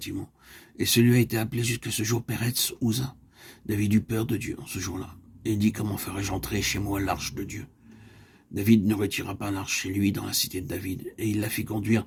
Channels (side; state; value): both; identical; correlation 1.00